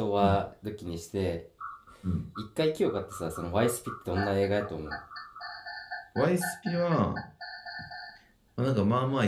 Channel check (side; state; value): both; identical; correlation 1.00